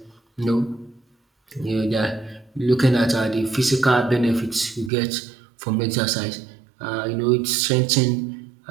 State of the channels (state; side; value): drops out; left; at 4.9 s